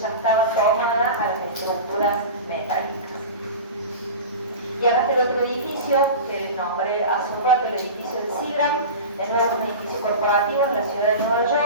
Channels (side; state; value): both; inverted; correlation -0.30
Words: estaba tomada a las estructuras metálicas. Y acá está el otro edificio que nombré hace un rato, el edificio de Seagram, de nuevo un edificio corporativo ciudad de Nueva